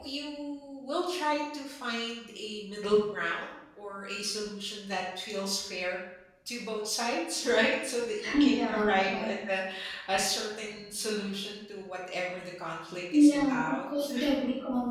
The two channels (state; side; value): identical; both; correlation 1.00